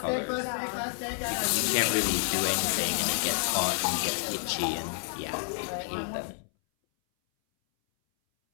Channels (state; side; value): silent; right; 58 dB below the other